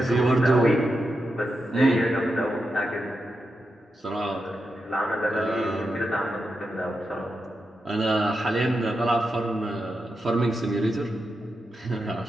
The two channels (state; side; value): normal; both; correlation 0.87